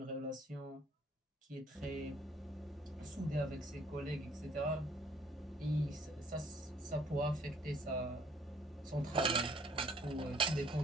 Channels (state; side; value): normal; both; correlation 0.61